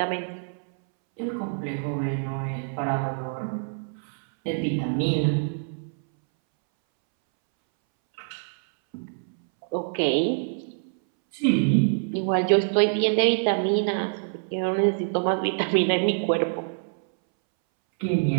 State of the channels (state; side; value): silent; left; 61 dB below the other